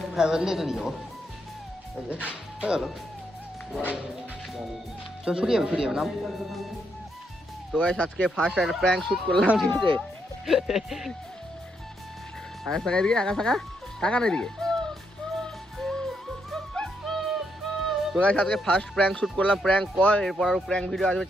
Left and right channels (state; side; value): normal; both; correlation 0.78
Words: হ্যাঁ বললে তো নিয়ে যাবো। এই যে হয়ে গেল, চল ছুটিয়ে যাবে নাম। তো গাইস আজকে ফার্স্ট একটা প্র্যাঙ্ক শুট করলাম, ঠিক আছে? আকাশ টাকা এদিকে, আকাশ টাকা না এদিকে। তো গাইস আজকে ফার্স্ট প্র্যাঙ্ক শুট করলাম, প্র্যাঙ্ক কল। এরপর আরও প্র্যাঙ্ক ভিডিও আসবে